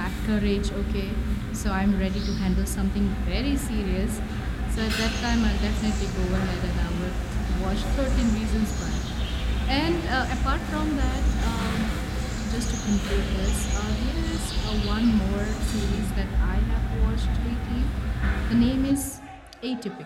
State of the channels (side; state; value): both; identical; correlation 1.00